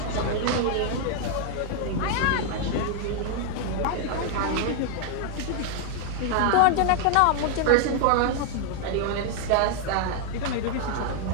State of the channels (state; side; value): different; both; correlation 0.00